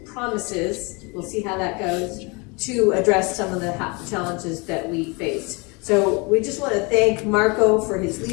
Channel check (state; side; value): quieter; right; 29.3 dB